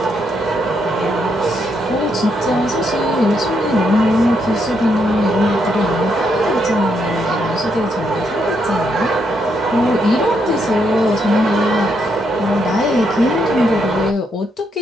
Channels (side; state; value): both; normal; correlation 0.77